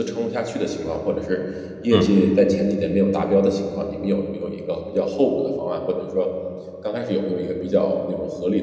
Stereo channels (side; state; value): both; identical; correlation 1.00